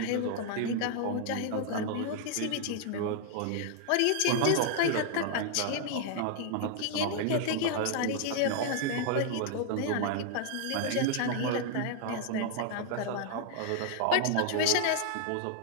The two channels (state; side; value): different; both; correlation 0.00